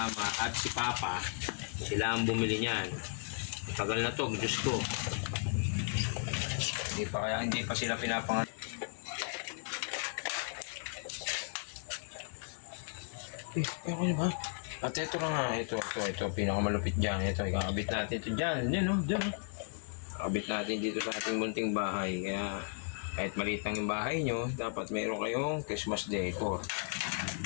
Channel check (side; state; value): right; silent; 54 dB below the other